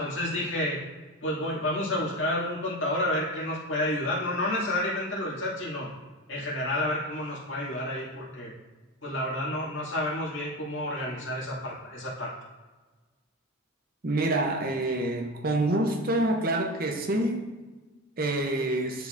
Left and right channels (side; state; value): both; normal; correlation 0.24